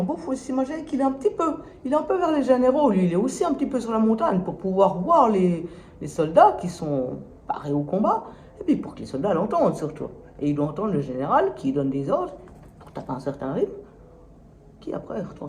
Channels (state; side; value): identical; both; correlation 1.00